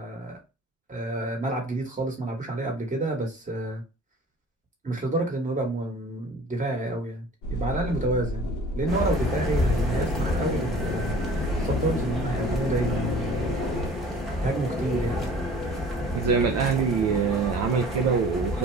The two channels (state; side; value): normal; both; correlation 0.47